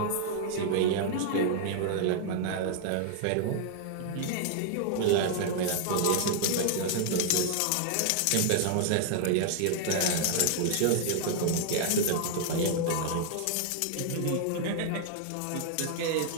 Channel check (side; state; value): both; different; correlation 0.00